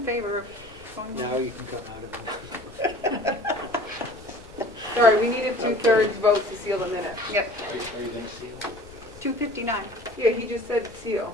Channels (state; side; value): noise; left; rumble, 21 dB below the sound